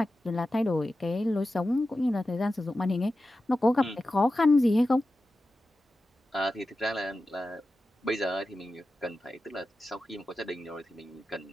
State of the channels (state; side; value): normal; both; correlation 0.93